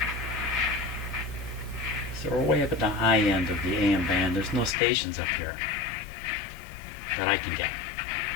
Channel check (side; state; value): right; drops out; at 4.8 s